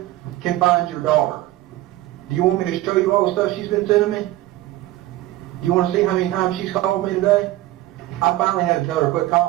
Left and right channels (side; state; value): left; quieter; 16.1 dB